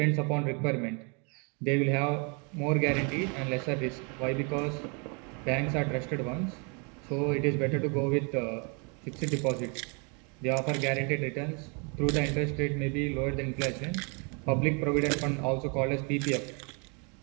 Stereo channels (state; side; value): quieter; left; 34.9 dB